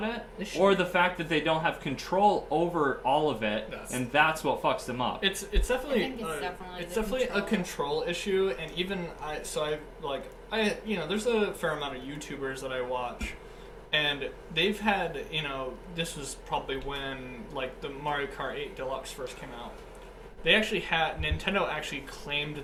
it, or the fact that they don't have control over all of it, and that's what fucks them up. It's definitely a control issue, and even there's a fair amount of YouTubers that I watch, and they've had this was probably when like the Mario Kart 8 Deluxe first came out. They actually had Nintendo actually claimed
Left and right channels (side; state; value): both; identical; correlation 1.00